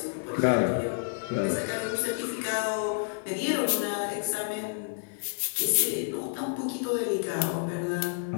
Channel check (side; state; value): right; silent; digital silence